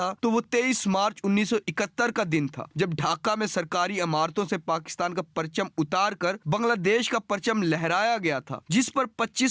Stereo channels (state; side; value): identical; both; correlation 1.00